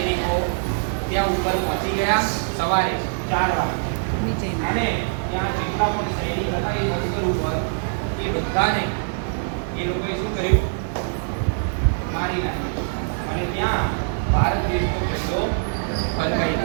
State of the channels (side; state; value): left; silent; 63 dB below the other